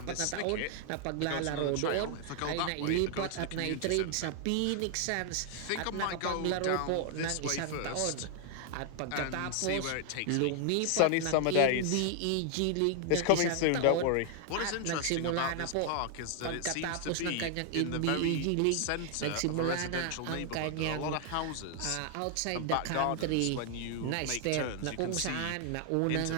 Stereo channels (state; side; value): different; both; correlation 0.00